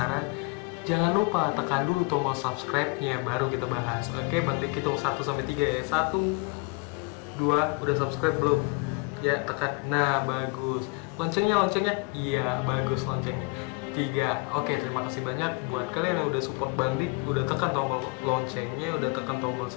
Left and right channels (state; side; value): quieter; right; 29.1 dB